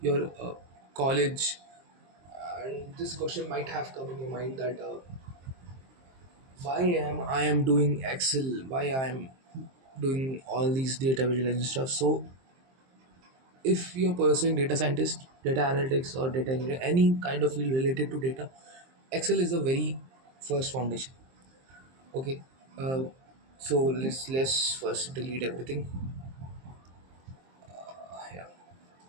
college, and this question might have come in your mind that why am I am doing Excel, why I am doing all these data visualization stuff. So if you're pursuing data scientist, data analytics, or data engineering, any kind of field related to data, Excel is the very first foundation. Okay, uh, so let's first delete everything. Yeah,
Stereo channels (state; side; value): late; left; 23 ms